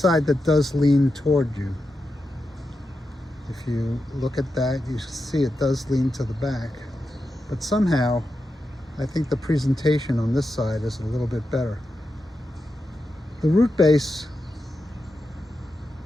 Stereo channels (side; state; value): both; normal; correlation 0.89